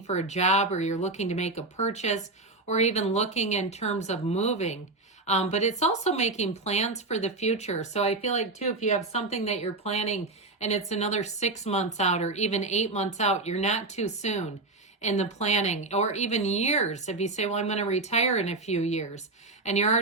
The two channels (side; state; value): left; quieter; 3.2 dB